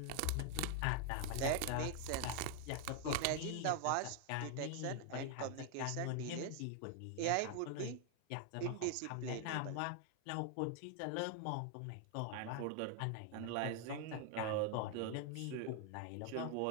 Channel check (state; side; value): different; both; correlation 0.01